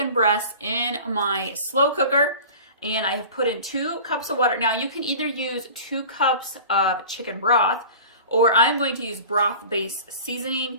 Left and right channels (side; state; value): both; inverted; correlation -0.38